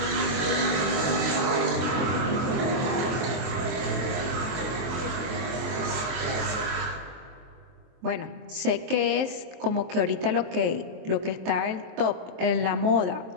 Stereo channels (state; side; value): late; left; 23 ms